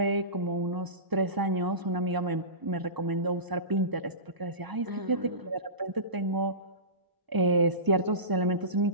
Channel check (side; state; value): left; late; 1.0 ms